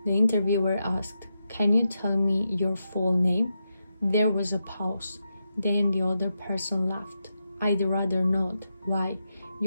The interviewer asked, "Can you tell me your full name?" There was a pause. Then the other person laughed. "I'd rather not." "Why?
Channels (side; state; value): both; inverted; correlation -0.86